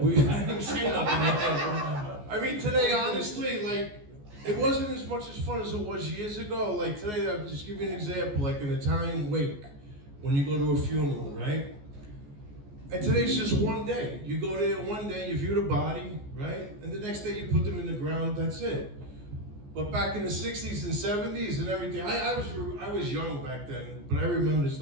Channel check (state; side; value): late; left; 14 ms